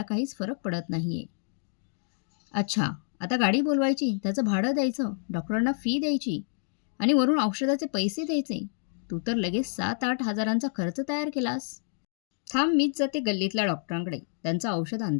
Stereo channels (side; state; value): right; silent; digital silence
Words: काहीच फरक पडत नाहीये. अच्छा, आता गाडी बोलवायची, त्याचं भाडं द्यायचं, डॉक्टरांना फी द्यायची आणि वरून औषधाचे पैसे द्यायचे. तू तर लगेच 7-8 हजारांचा खर्च तयार केलास. थांब, मीच जाते गल्लीतल्या डॉक्टरांकडे, त्यांचं औषध